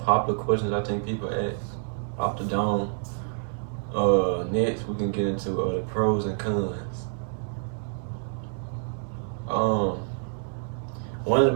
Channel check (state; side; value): silent; left; 60 dB below the other